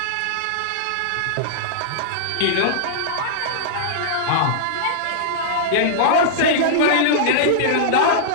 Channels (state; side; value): different; both; correlation -0.02